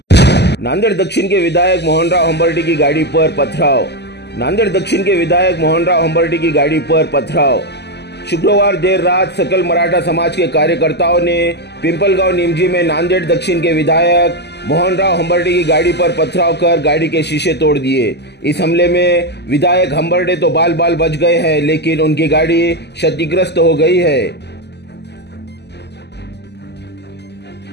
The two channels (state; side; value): late; right; 0.49 ms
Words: नांदेड़ दक्षिण के विधायक मोहनराव हंबर्डे की गाड़ी पर पथराव। नांदेड़ दक्षिण के विधायक मोहनराव हंबर्डे की गाड़ी पर पथराव। शुक्रवार देर रात सकल मराठा समाज के कार्यकर्ताओं ने पिंपलगांव निमजी में नांदेड़ दक्षिण के विधायक मोहनराव हंबर्डे की गाड़ी पर पथराव कर गाड़ी के शीशे तोड़ दिए। इस हमले में विधायक हंबर्डे तो बाल बाल बच गए हैं, लेकिन उनकी गाड़ी क्षतिग्रस्त हो गई है।